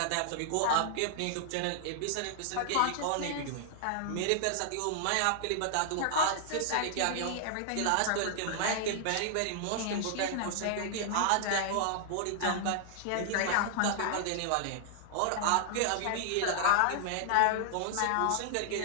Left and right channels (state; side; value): different; both; correlation -0.01